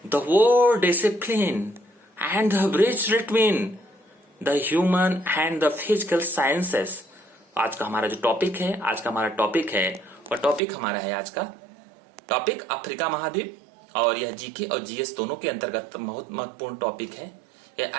the world discipline and the bridge between the human and the physical sciences. आज का हमारा जो टॉपिक है, और टॉपिक हमारा है आज का टॉपिक अफ्रीका महाद्वीप। और यह जीके और जीएस दोनों के अंतर्गत बहुत महत्वपूर्ण टॉपिक है। यह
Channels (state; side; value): drops out; left; at 10.6 s